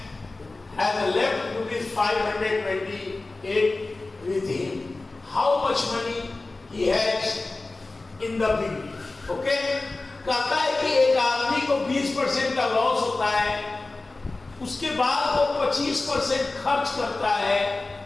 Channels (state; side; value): quieter; right; 3.3 dB